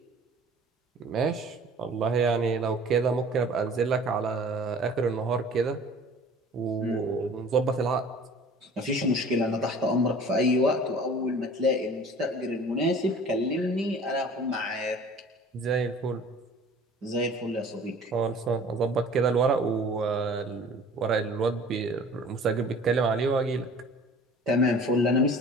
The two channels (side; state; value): both; normal; correlation 0.46